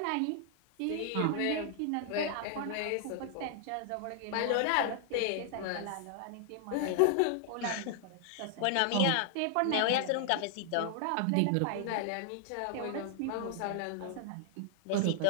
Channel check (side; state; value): both; different; correlation 0.00